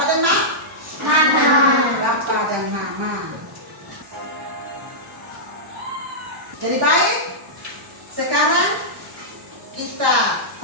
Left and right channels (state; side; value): normal; both; correlation -0.12